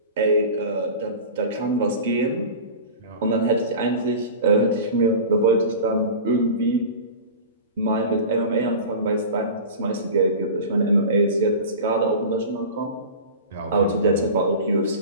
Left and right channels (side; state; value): both; inverted; correlation -0.33